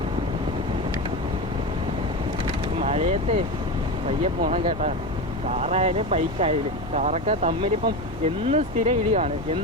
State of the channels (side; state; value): right; noise; hum, 14 dB below the sound